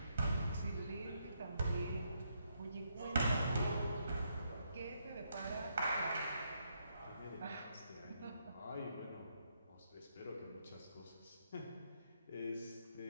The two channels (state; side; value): inverted; both; correlation -0.77